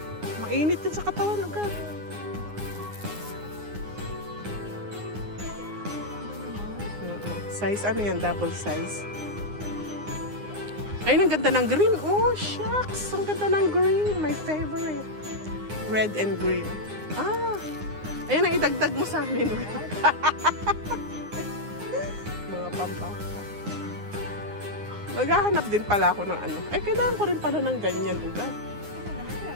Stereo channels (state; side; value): late; left; 9.7 ms